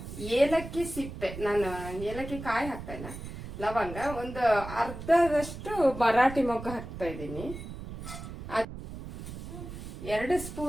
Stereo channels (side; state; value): right; noise; rumble, 10 dB below the sound